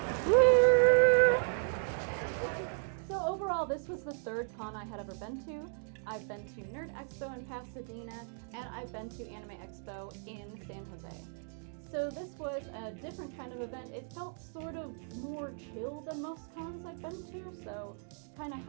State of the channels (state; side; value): silent; left; 54 dB below the other